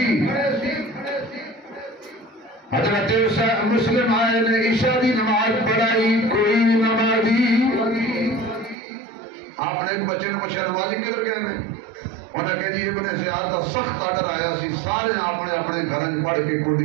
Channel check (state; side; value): drops out; left; at 8.8 s